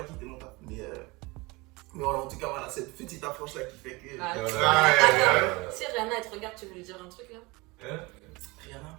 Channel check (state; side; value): quieter; left; 24.3 dB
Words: quitter mon taf. Mais voilà, en tout cas, voilà, cette petite approche là qui fait que. Ah, Ouais. si Rihanna, elle te regarde, tu veux lui dire un truc là? Rihanna.